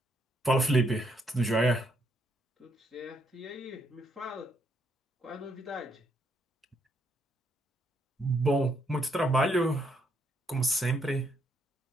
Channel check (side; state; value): both; normal; correlation 0.74